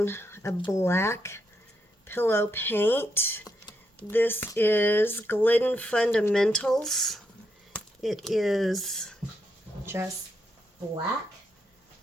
a black pillow paint. This is Glidden Fundamentals. It is just black.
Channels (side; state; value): both; normal; correlation 0.80